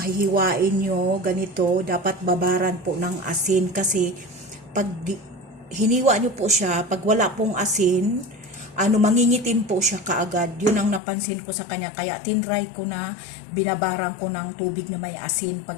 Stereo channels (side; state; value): right; drops out; at 11.0 s